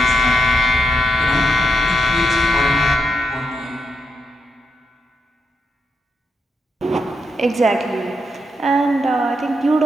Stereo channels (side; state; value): both; normal; correlation 0.82